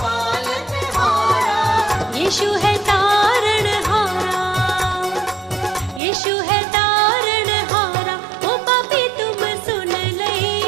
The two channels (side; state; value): left; drops out; at 6.0 s